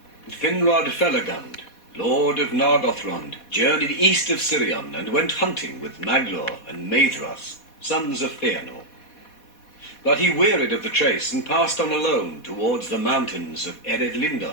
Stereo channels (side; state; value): right; late; 4.2 ms